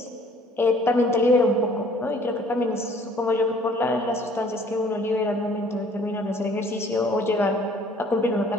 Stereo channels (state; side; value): normal; both; correlation 0.56